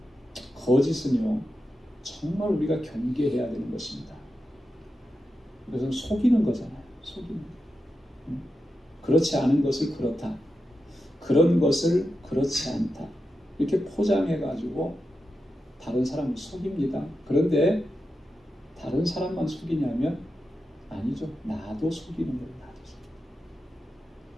거짓은요, 정말 우리가 경계해야 되는 것입니다. 이것은 속이는 거잖아요. 속이는 거. 그렇지 않은 것을 그렇다. 그런 것을 그렇지 않다. 이렇게 포장해가지고 다른 사람을 속입니다. 그런데 다른 사람만 속이냐면 아니죠. 나도 속이는 거예요. 나도 속이는.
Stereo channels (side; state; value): both; normal; correlation 0.89